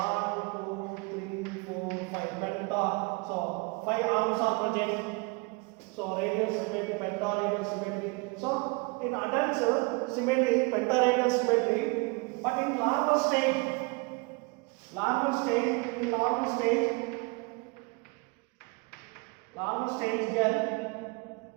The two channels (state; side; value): quieter; left; 29.0 dB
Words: 2, 3, 4, 5 penta. So 5 arms are present. So radial symmetry, pentaradial symmetry. So in adults symmetry, pentaradial symmetry, but in larval stage, there